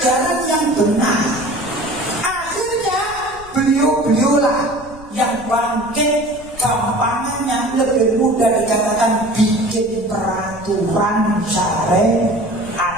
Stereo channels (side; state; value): left; noise; rumble, 20 dB below the sound